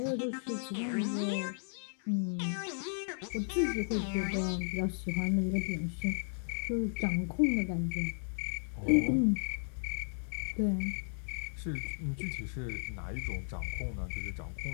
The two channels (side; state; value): right; silent; digital silence